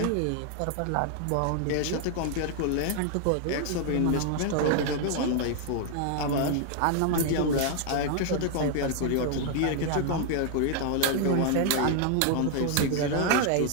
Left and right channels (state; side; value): different; both; correlation 0.00